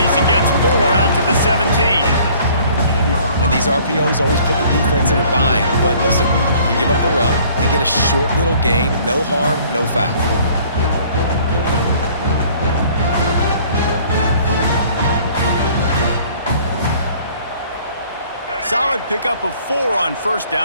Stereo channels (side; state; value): both; inverted; correlation -0.55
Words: and gets 4 out to the 17. And these RPOs always put the defense in a bind. But listen, you give up the run, they get a short little gain, no harm, no foul. Solid pickup of 4 on first